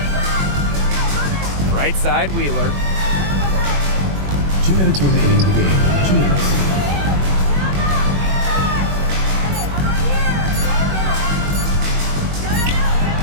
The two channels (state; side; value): late; left; 21 ms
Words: Right side Wheeler. 2 minutes remaining in the game. 2 minutes.